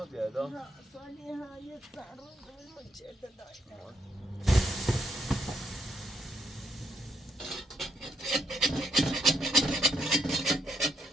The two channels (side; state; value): both; normal; correlation 0.76